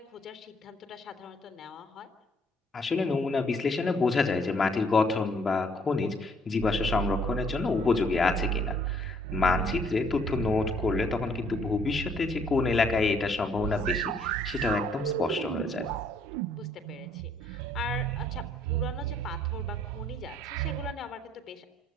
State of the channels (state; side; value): normal; both; correlation 0.65